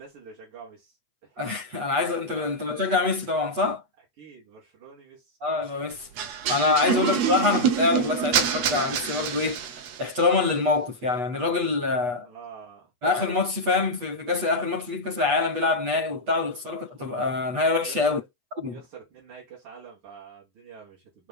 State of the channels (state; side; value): late; left; 8.3 ms